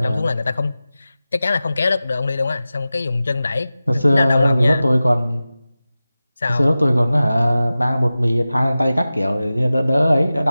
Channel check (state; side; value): inverted; both; correlation -0.95